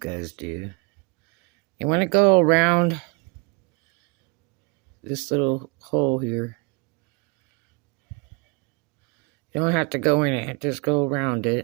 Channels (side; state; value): left; quieter; 30.0 dB